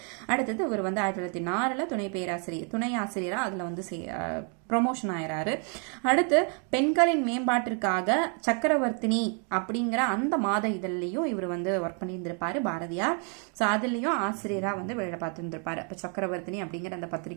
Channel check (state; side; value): quieter; left; 39.6 dB